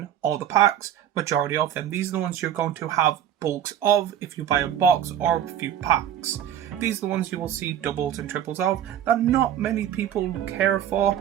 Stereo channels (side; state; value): left; quieter; 10.2 dB